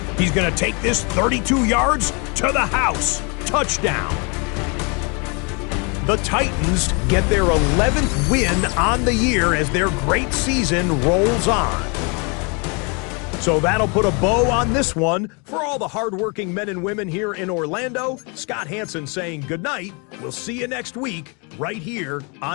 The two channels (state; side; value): quieter; right; 32.9 dB